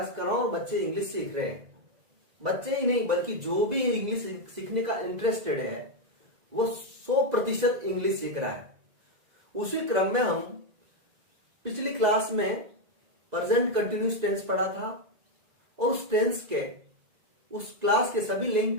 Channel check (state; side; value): late; left; 2.0 ms